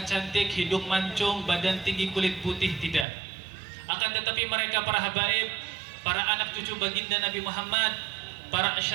cantik, hidung mancung, badan tinggi, kulit putih, tidak. Akan tetapi mereka para habaib, para anak cucu baginda Nabi Muhammad, para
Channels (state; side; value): drops out; left; at 3.1 s